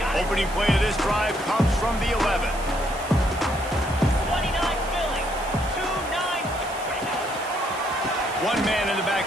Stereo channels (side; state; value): right; noise; hiss, 16 dB below the sound